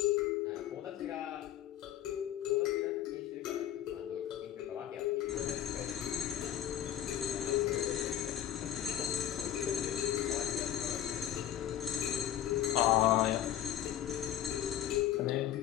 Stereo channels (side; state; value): right; quieter; 11.5 dB